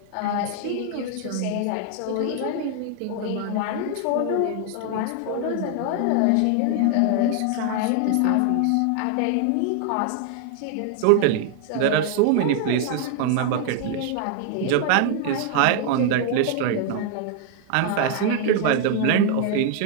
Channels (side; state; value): both; different; correlation 0.00